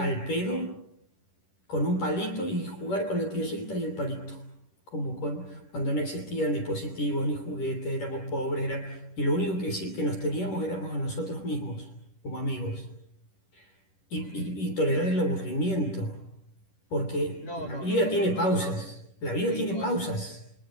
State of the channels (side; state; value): right; late; 10 ms